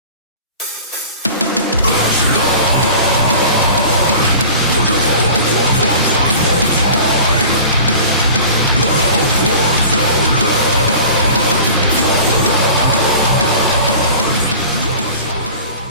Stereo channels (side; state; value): both; inverted; correlation -0.40